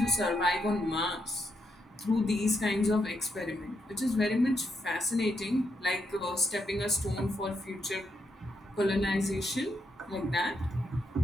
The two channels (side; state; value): both; normal; correlation 0.80